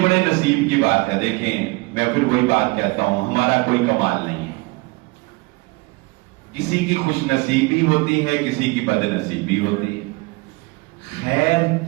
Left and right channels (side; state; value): left; quieter; 25.5 dB